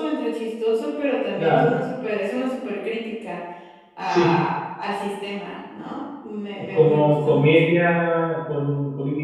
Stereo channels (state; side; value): identical; both; correlation 1.00